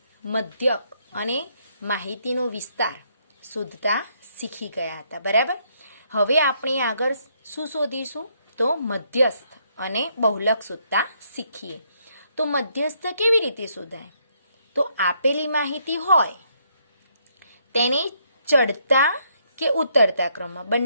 મધ્યક અને માહિતીનો વિસ્તાર શોધતા શીખી ગયા હતા, બરાબર. હવે આપણે આગળ શું શોધીશું? તો મધ્યસ્થ અને બહુલક શોધતા શીખીએ. તો મધ્યસ્થ કેવી રીતે શોધાય? તો આપેલી માહિતી હોય તેને ચડતા કે ઉતરતા ક્રમમાં,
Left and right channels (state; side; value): inverted; both; correlation -0.72